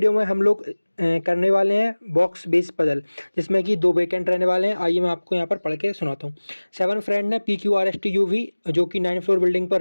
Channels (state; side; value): inverted; both; correlation -1.00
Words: में हम लोग करने वाले हैं बॉक्स बेस पजल, जिसमें कि दो वेकेंट रहने वाले हैं। आइए मैं आपको यहाँ पर पढ़ के सुनाता हूँ। 7 फ्रेंड है PQRSTUV, जो कि 9th फ्लोर बिल्डिंग पर